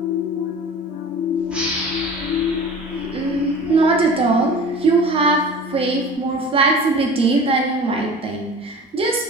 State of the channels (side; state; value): both; normal; correlation 0.40